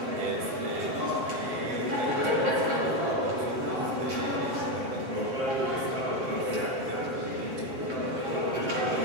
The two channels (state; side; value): late; left; 7.6 ms